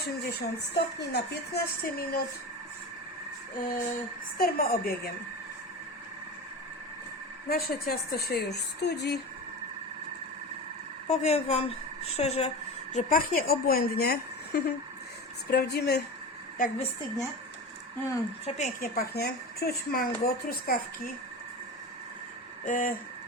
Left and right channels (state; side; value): normal; both; correlation 0.28